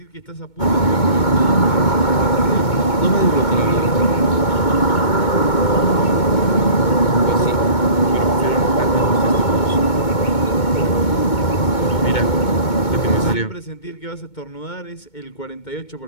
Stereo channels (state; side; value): late; right; 2.2 ms